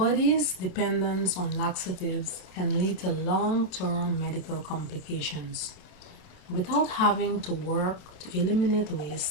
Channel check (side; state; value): right; late; 27 ms